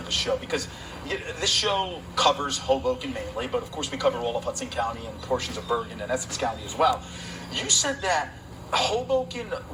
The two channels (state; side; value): identical; both; correlation 1.00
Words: show, because this show covers Hoboken mainly, but of course we cover all of Hudson County and portions of Bergen and Essex County as well. You said that Hoboken